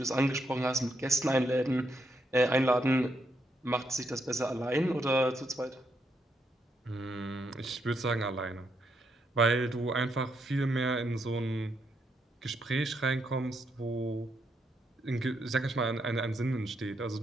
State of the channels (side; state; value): both; normal; correlation 0.78